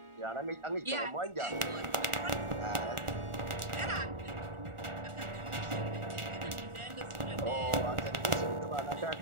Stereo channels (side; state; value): left; late; 1.4 ms